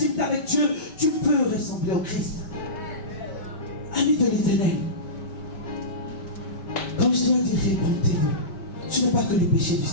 avec Dieu, tu peux ressembler au Christ. Ami de l'Éternel, comme je dois dire, répondez-vous. Ce n'est pas que les péchés du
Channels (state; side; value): late; right; 5.1 ms